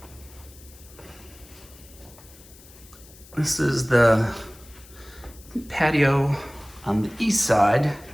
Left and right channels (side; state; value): left; noise; hiss, 22 dB below the sound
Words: This is the patio on the east side,